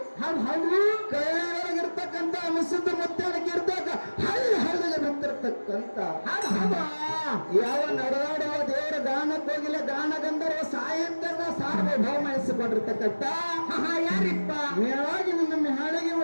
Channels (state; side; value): inverted; both; correlation -1.00